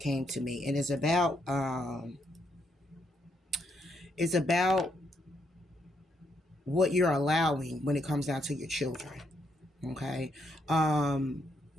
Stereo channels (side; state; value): both; normal; correlation 0.76